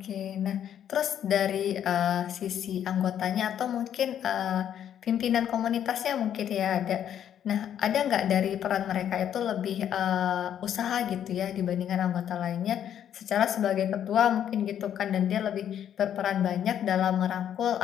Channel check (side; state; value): right; quieter; 9.8 dB